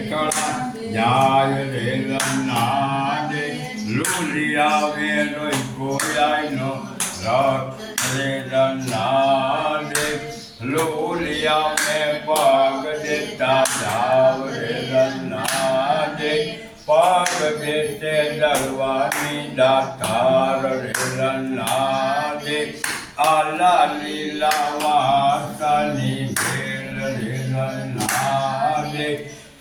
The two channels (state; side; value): identical; both; correlation 1.00